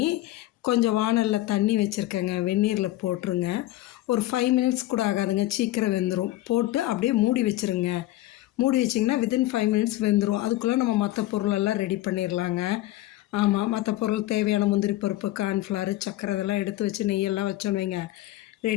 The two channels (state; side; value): quieter; right; 16.1 dB